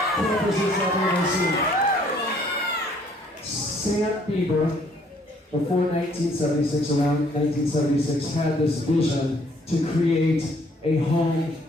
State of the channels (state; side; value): normal; both; correlation 0.63